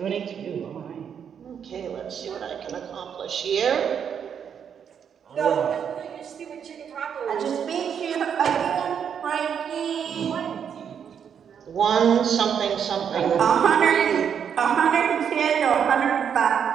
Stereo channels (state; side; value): quieter; left; 7.8 dB